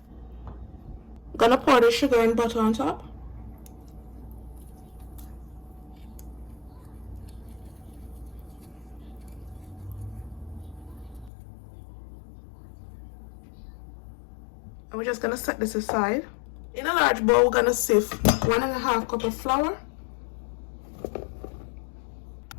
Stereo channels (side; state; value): right; drops out; at 11.3 s